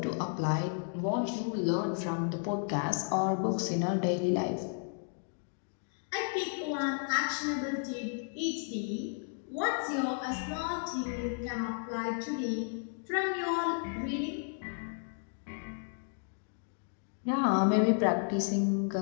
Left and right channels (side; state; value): right; silent; 56 dB below the other